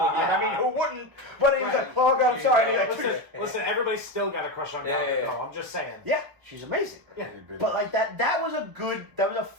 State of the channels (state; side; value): late; left; 1.2 ms